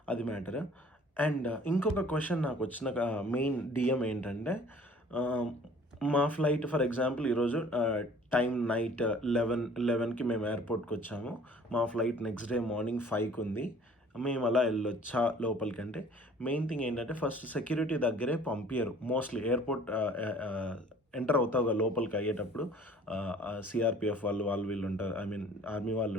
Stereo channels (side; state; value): both; normal; correlation 0.52